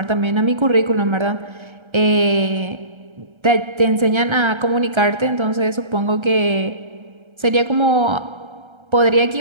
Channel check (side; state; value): left; late; 1.3 ms